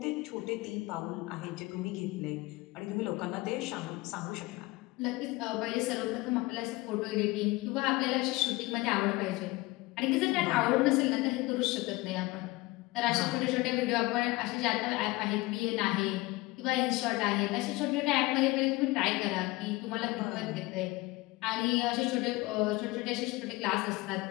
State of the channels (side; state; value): right; quieter; 21.5 dB